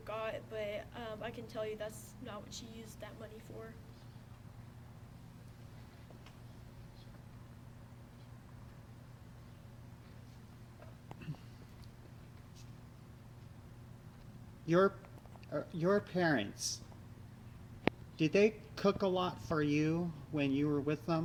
got, but I can tell you that's not what she used that money for. Your your parents, did they cook a lot for you when you were with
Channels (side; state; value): both; identical; correlation 1.00